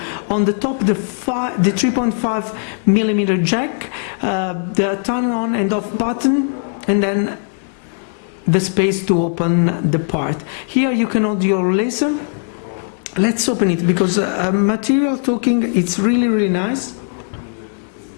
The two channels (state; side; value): silent; right; 60 dB below the other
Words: On the top the 3.5 millimeter jack, the turn on and off button, and then the space to open the part. Here you can hold your laser. Let's open it, because material talking, it's really nice.